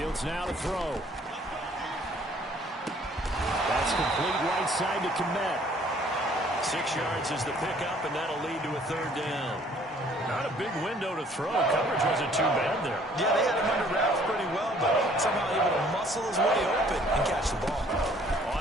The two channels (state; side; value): normal; both; correlation 0.58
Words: now to throw. That's complete right side to Kmet. 6 yards is the pickup, and that'll lead to a 3rd down. Not a big window to throw. Coverage wasn't too bad there. Yeah, they had him under wraps pretty well, but somehow able to muscle his way open and catch the ball.